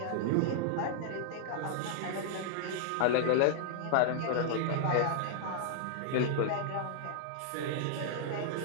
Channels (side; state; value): both; different; correlation -0.01